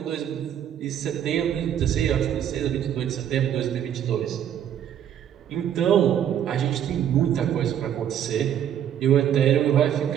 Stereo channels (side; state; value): left; quieter; 9.9 dB